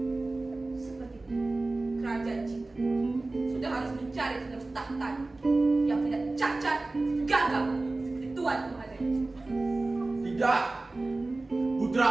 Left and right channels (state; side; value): quieter; left; 3.1 dB